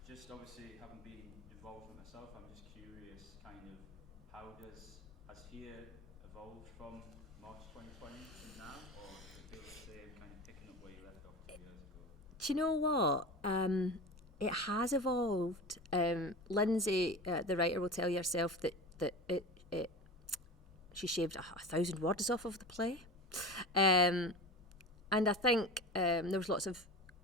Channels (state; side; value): normal; both; correlation 0.30